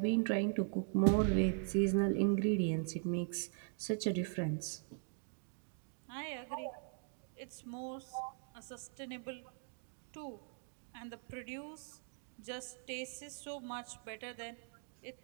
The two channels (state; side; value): silent; left; 51 dB below the other